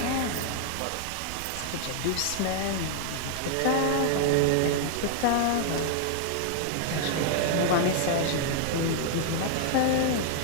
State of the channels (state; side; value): different; both; correlation 0.00